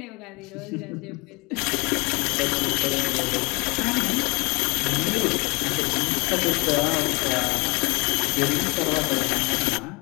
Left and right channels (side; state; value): right; quieter; 27.2 dB